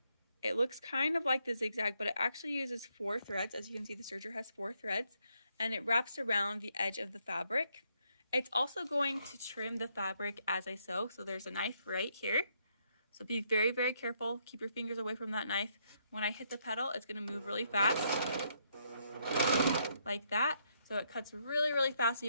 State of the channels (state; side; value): inverted; both; correlation -0.74